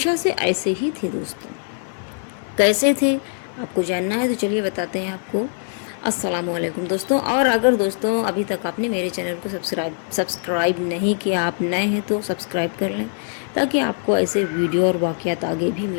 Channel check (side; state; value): right; silent; digital silence